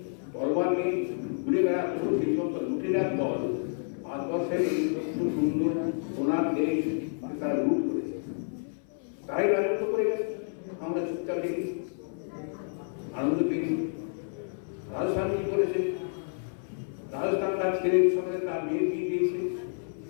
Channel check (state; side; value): silent; right; 58 dB below the other